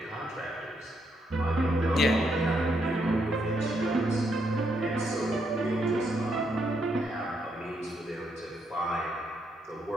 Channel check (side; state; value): both; normal; correlation 0.77